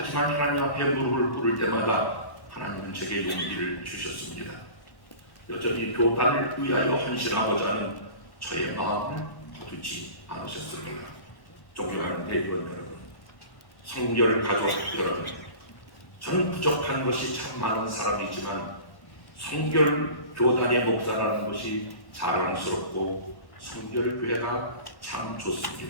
하나님 앞에 무릎을 꿇을 때마다 하나님은 제게 용기를 주셨습니다. 여전히 교단을 위하여 헌신하고자 하는 저의 마음을 거두지 않으셨을 거라. 존경하는 대의원 여러분, 성결 가족 여러분, 저는 부족한 것이 참 많은 사람이지만 성결 교단의 목사라는 것이 자랑스럽고 성결 교회가 참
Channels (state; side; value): late; right; 1.1 ms